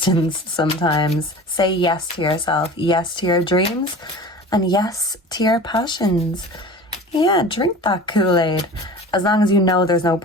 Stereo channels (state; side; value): normal; both; correlation 0.38